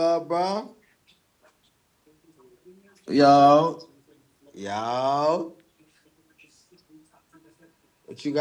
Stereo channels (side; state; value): both; identical; correlation 1.00